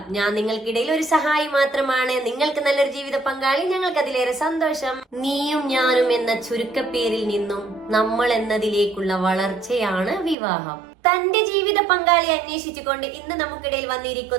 ഞാൻ നിങ്ങൾക്കിടയിൽ ഒരു സഹായി മാത്രമാണ്. നിങ്ങൾക്ക് നല്ലൊരു ജീവിത പങ്കാളി, ഞങ്ങൾക്ക് അതിലേറെ സന്തോഷം. നീയും ഞാനും എന്ന ചുരുക്കപ്പേരിൽ നിന്നും നമ്മൾ എന്നതിലേക്കുള്ള വളർച്ചയാണ് വിവാഹം. തന്റെ ജീവിത പങ്കാളി അന്വേഷിച്ചുകൊണ്ട് ഇന്ന് നമുക്കിടയിൽ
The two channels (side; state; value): left; drops out; at 10.4 s